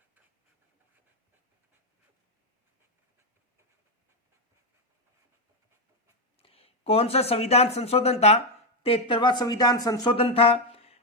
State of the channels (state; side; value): normal; both; correlation 0.05